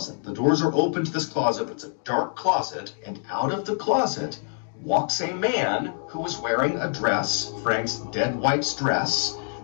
The doors are open to this closet, but it's a dark closet, and out of the closet walks a man who was wearing a dress, Frank's dead wife's dress.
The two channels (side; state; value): right; silent; digital silence